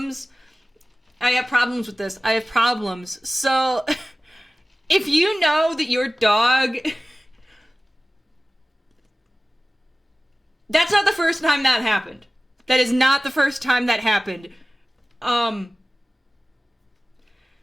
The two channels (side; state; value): both; normal; correlation 0.97